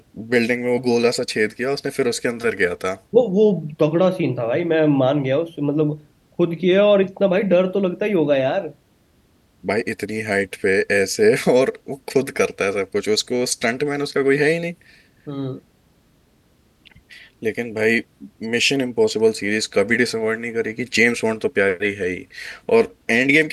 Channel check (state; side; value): identical; both; correlation 1.00